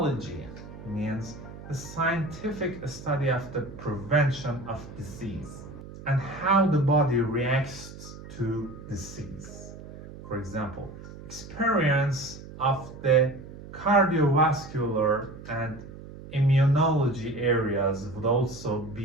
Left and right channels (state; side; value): noise; right; hum, 15 dB below the sound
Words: means the scientific study of the prevention of disease and how the body reacts to disease. For example, experience of the cardiovascular and immunology areas would also